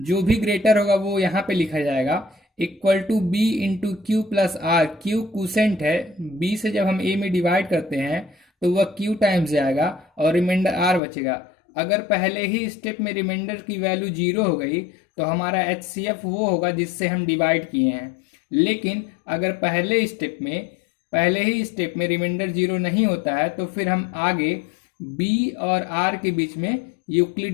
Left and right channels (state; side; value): drops out; right; at 11.0 s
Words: जो भी ग्रेटर होगा वो यहाँ पे लिखा जाएगा, equal to b into q plus r. Q quotient है, बी से जब हम ए में डिवाइड करते हैं तो वह क्यू टाइम्स जाएगा और रिमाइंडर आर बचेगा। अगर पहले ही स्टेप में रिमाइंडर की वैल्यू 0 हो गई तो हमारा एचसीएफ वो होगा जिससे हम डिवाइड किए हैं। लेकिन अगर पहले ही स्टेप में रिमाइंडर 0 नहीं होता है तो फिर हम आगे बी और आर के बीच में